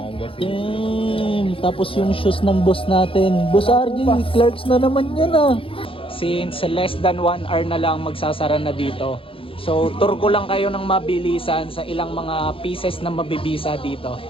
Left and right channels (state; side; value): late; right; 0.26 ms